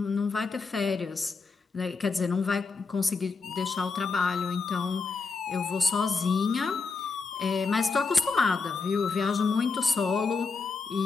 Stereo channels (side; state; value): right; quieter; 4.4 dB